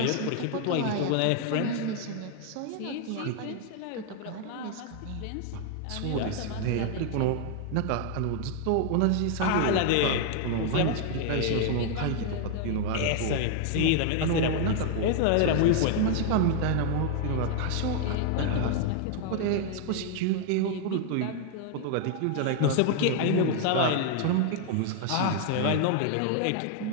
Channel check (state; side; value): different; both; correlation 0.00